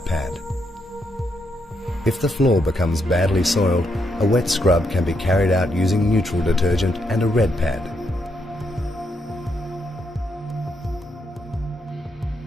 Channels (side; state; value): both; normal; correlation 0.78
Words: pad. If the floor becomes badly soiled, a wet scrub can be carried out using neutral detergent and a red pad.